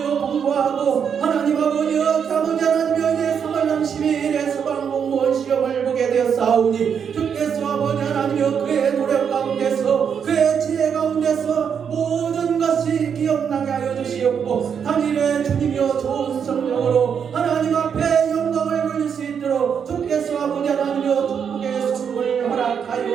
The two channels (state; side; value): quieter; left; 7.3 dB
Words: 공부하고 하나님 아버지여 아버지 하나님이여 이제 3월 30일에 소방공무원 시험을 보게 되었사오니 주께서 아버지 하나님이여 그의 노력 가운데서 그의 지혜 가운데서 모든 것이 기억나게 하여 주시옵고 당일에 주님이여 좋은 성령으로 하나님 앞에 영광을 돌릴 수 있도록 주께서 아버지 하나님이여 축복의 선물을